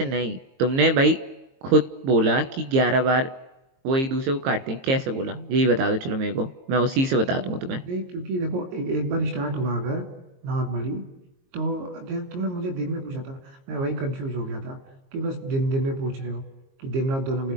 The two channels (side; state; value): left; late; 22 ms